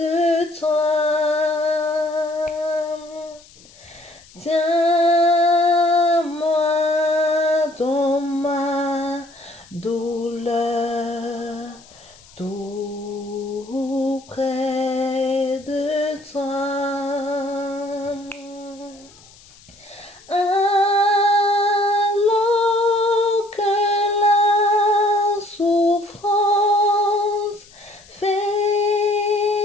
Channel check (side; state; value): left; noise; hiss, 25 dB below the sound